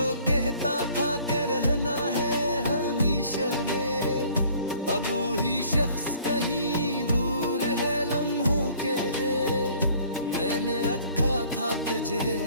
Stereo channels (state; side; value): inverted; both; correlation -0.55